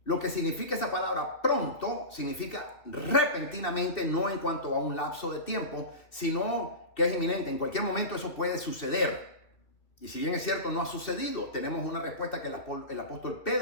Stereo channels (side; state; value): right; late; 2.7 ms